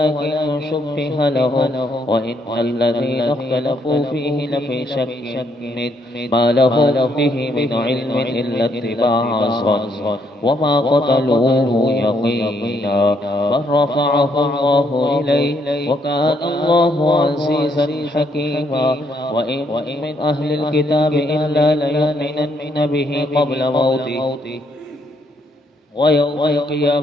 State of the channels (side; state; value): both; normal; correlation 0.72